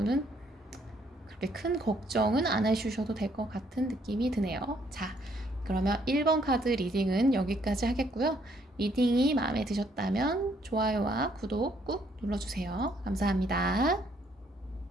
그렇게 큰 걱정은 안 해주셔도 될 것 같은 느낌이 드네요. 자, 그러면 1번 카드 리딩은 여기까지 하겠고요. 리딩이 마음에 드셨다면 좋아요와 구독 꾹 눌러주세요. 감사합니다.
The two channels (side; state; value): both; normal; correlation 0.68